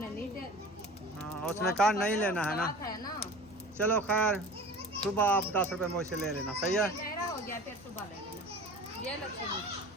नहीं दे। हाँ उसने कहा नहीं लेना है ना। बात है ना। चलो खैर सुबह आप 10 रुपए मुझसे ले लेना। सही है। गहरा हो गया फिर सुबह ले लेना। ये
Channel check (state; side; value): normal; both; correlation 0.38